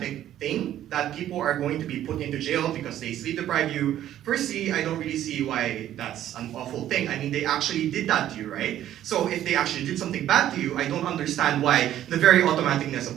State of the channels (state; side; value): quieter; left; 12.0 dB